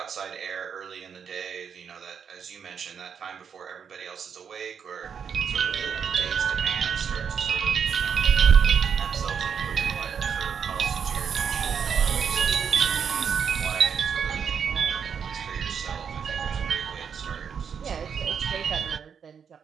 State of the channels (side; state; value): left; quieter; 7.1 dB